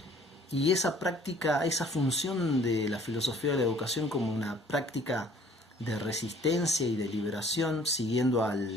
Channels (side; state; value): both; normal; correlation 0.55